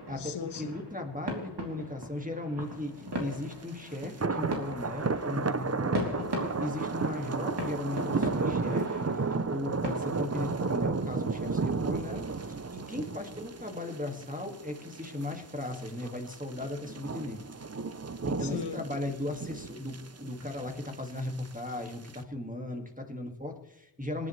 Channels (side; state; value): both; normal; correlation 0.27